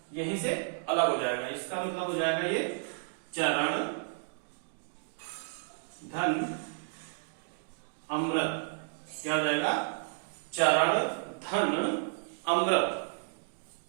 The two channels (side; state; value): left; silent; digital silence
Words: यहीं से अलग हो जाएगा। इसका मतलब हो जाएगा ये चरण धन अमृत। क्या हो जाएगा? चरण धन अमृत,